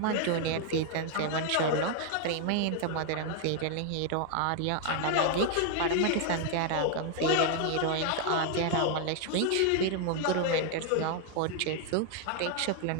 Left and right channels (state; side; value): different; both; correlation 0.00